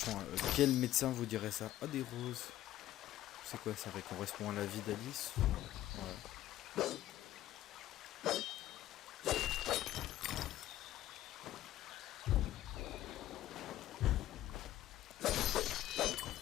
quel médecin vous dirait ça? Ah, des roses. C'est quoi, ça correspond à la vie d'Alice? Ouais.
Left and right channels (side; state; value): right; quieter; 13.9 dB